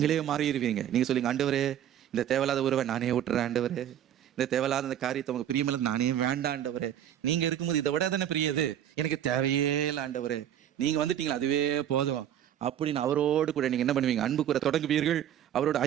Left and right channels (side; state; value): left; quieter; 10.6 dB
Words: மாறிடுவீங்க. நீங்க சொல்லுங்க, ஆண்டவரே இந்த தேவையில்லாத உறவை நானே விட்டுறேன், ஆண்டவரே இந்த தேவையில்லாத அந்த காரியத்தை உங்க பிரியமில்லை நானே வேண்டாம் ஆண்டவரே, நீங்க இருக்கும்போது இதை விட தானே பிரியது, எனக்கு தேவையே இல்லை ஆண்டவரே, நீங்க வந்துட்டீங்களா அதுவே போதும் அப்படின்னு அவரோடு கூட நீங்க என்ன பண்ணுவீங்க, அன்பு கூற தொடங்குவீர்கள், அவரோட